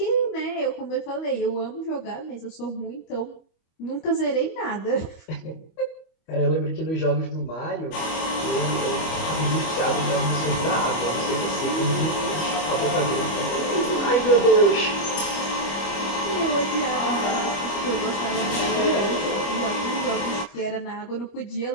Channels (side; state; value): right; late; 25 ms